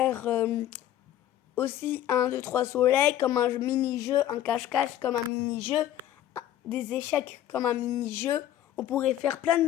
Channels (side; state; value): right; quieter; 12.1 dB